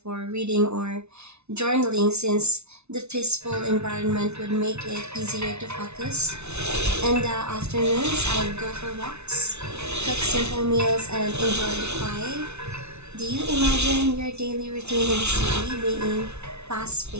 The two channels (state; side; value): late; left; 0.81 ms